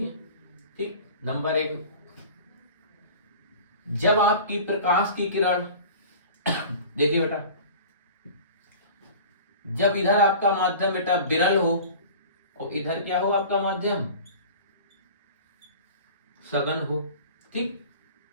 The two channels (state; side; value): inverted; both; correlation -0.40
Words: है, ठीक। नंबर एक, जब आपकी प्रकाश की किरण देखिए बेटा, जब इधर आपका माध्यम बेटा विरल हो और इधर क्या हो आपका माध्यम सघन हो, ठीक,